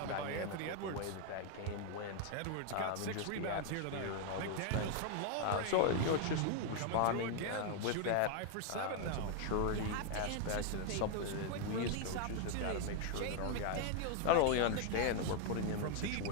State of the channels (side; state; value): both; different; correlation 0.00